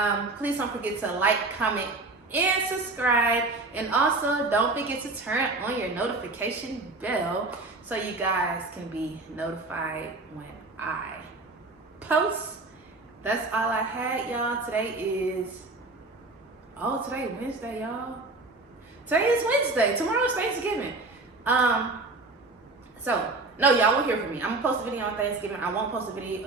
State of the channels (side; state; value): left; quieter; 3.3 dB